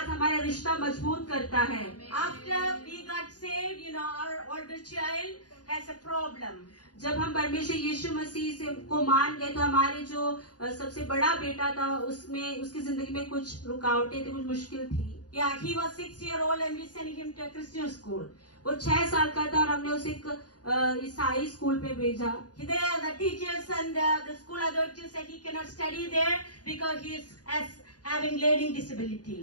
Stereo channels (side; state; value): right; late; 0.69 ms